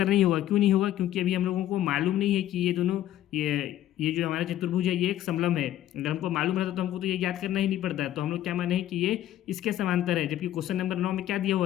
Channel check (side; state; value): right; quieter; 12.8 dB